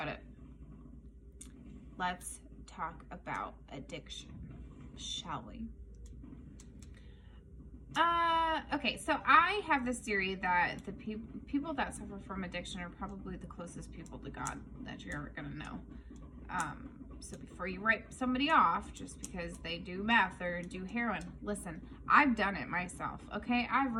it. Let's talk about addiction, shall we? Okay, so I have this theory that the people that suffer from addiction are probably the closest people to God that you're ever gonna know. So before you write somebody off just because they do meth or do heroin, listen, I've done it myself, okay? I've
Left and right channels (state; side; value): identical; both; correlation 1.00